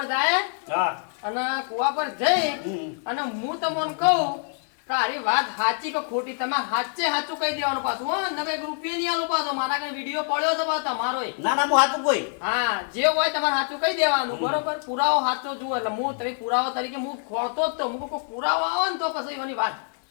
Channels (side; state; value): right; silent; 56 dB below the other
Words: જાય હા અને કુવા પર જઈ હમ. અને હું તમને કહું કે આરી વાત સાચી કે ખોટી તમારે સાચે સાચું કહી દેવાનું પાછું હો નકર 1 રૂપિયા નહીં આલો પાછો મારા કને વિડીયો પડ્યો છે પાછો તમારો ના ના હું હાથું કોઈ હા જે હોય તમારે સાચું કહી દેવાનું બરોબર પુરાવો સાચો જુઓ એટલે હું તમે પુરાવો તરીકે હું ખોળતો જ તો હું કોઈ પુરાવો આવે ને તો પછી એવાની વાત